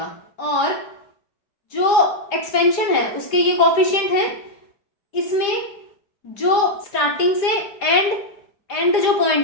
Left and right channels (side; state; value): right; late; 5.0 ms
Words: और जो एक्सपेंशन है उसके ये कोफिशिएंट है, इसमें जो स्टार्टिंग से एंड जो पॉइंट